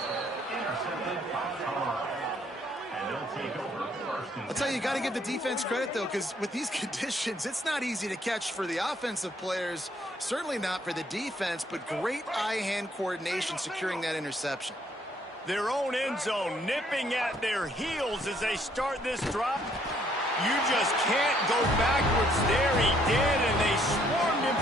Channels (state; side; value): normal; both; correlation 0.67